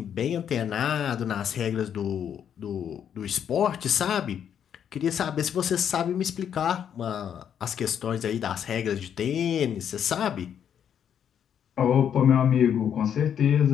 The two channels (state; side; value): quieter; right; 8.7 dB